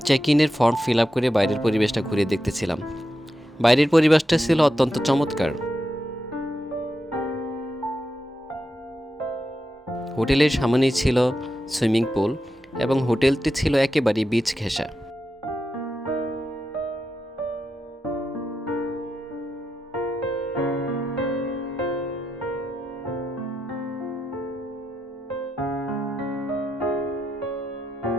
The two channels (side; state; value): both; normal; correlation 0.87